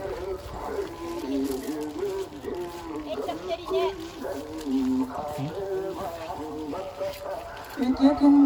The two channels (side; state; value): both; identical; correlation 1.00